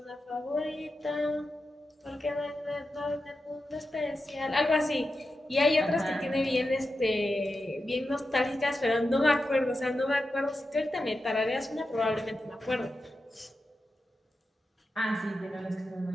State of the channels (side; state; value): both; normal; correlation 0.90